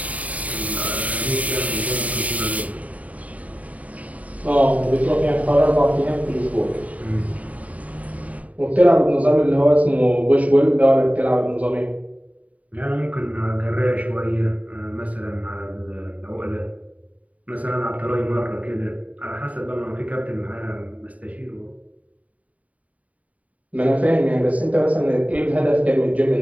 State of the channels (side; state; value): left; late; 0.070 ms